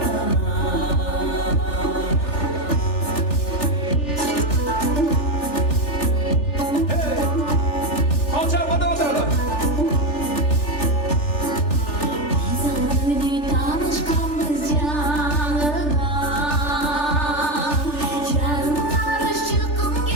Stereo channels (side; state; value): right; late; 3.4 ms